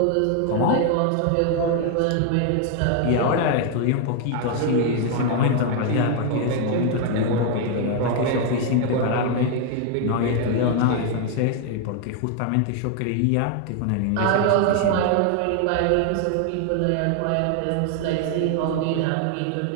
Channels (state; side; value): different; both; correlation 0.00